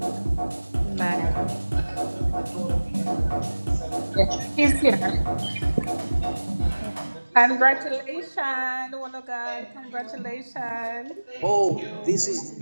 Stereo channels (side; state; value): both; inverted; correlation -1.00